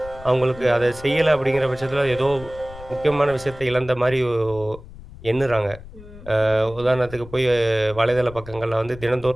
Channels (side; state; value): left; noise; rumble, 17 dB below the sound